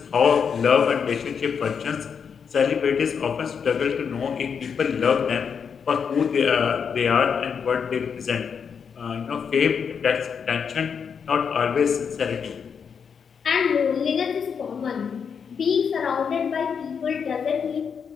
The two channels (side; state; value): right; quieter; 6.7 dB